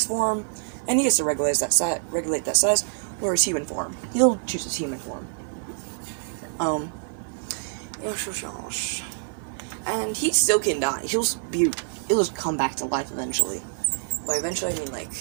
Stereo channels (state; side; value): silent; left; 60 dB below the other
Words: form, and he gets to regulate that size, or his human form. He'll choose his human form. And he still can die. He'll just come back to life eventually. By eventually, I mean, like,